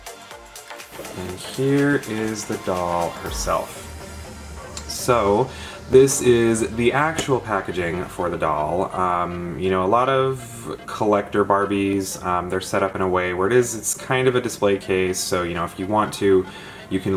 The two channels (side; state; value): both; identical; correlation 1.00